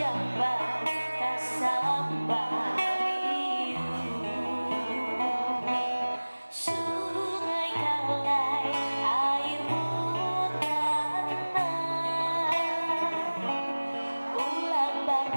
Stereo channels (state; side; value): inverted; both; correlation -1.00